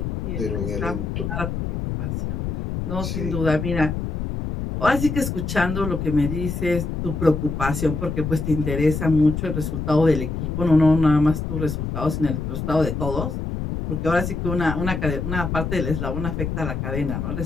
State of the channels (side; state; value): left; noise; rumble, 3 dB below the sound